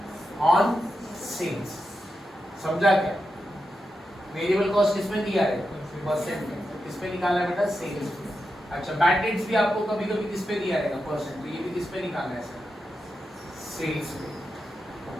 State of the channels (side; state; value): both; normal; correlation 0.88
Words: ऑन सेल्स, समझा क्या। वेरिएबल कॉस्ट किसमें दिया है, परसेंट में, तो किसमें निकालना है बेटा, सेल्स में। अच्छा, बैड डेट्स भी आपको कभी-कभी किस पे दिया रहेगा, परसेंट, तो ये भी किस पे निकालना है सर, सेल्स पे।